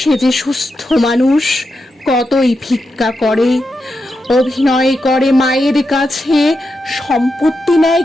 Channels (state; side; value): normal; both; correlation 0.87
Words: সুস্থ মানুষ কতই ভিক্ষা করে। অভিনয় করে মায়ের কাছে সম্পত্তি নেয়